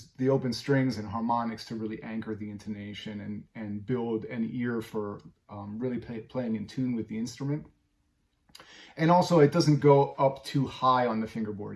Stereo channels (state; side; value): identical; both; correlation 1.00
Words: the open strings and harmonics to really anchor the intonation and build an ear for really playing in tune with the instrument. And also it doesn't go up too high on the